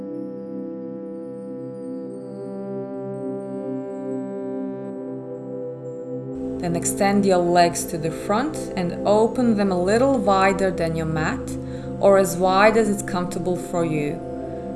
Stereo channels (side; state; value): both; identical; correlation 1.00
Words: Then extend your legs to the front and open them a little wider than your mat, or as wide as it's comfortable for you.